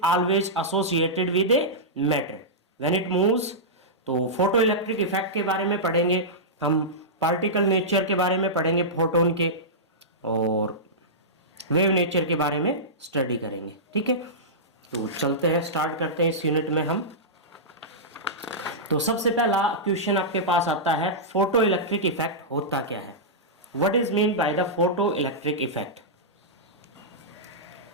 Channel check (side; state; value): both; normal; correlation -0.14